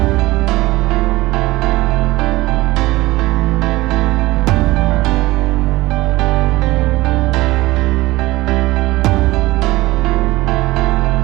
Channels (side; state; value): left; quieter; 19.3 dB